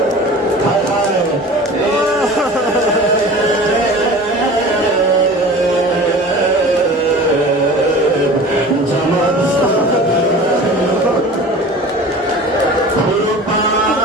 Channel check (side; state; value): both; normal; correlation 0.39